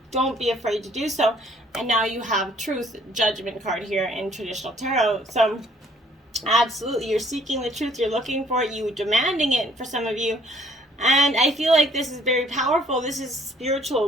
Don't be afraid to do so. And now you have truth, judgment card here in traditional tarot. So absolutely, you're seeking the truth. You're looking for it. You're demanding it for some of you. And I feel like this is very powerful. This is spiritual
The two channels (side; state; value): both; normal; correlation 0.62